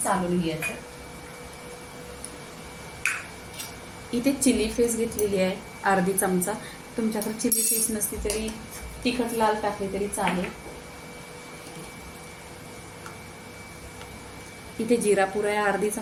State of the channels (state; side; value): identical; both; correlation 1.00